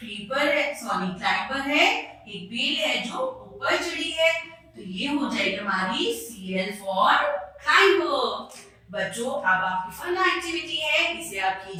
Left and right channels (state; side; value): identical; both; correlation 1.00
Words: है, सॉरी क्लाइंबर है, एक बेल है जो ऊपर चढ़ी है, तो ये हो जाएगी हमारी CL फॉर क्लाइंबर। बच्चों अब आपकी फन एक्टिविटी है, इसे आप